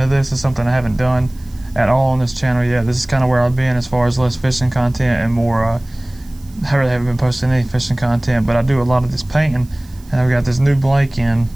this. It's something I haven't done at all on this channel yet. This is kind of where I've been as far as less fishing content and more, I really haven't been posting any fishing content, but I do a lot of this painting, and I've got this new blank in.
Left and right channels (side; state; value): right; noise; hiss, 27 dB below the sound